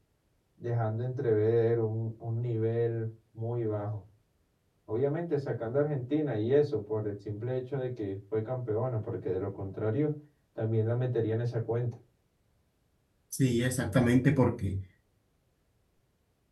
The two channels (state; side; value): identical; both; correlation 1.00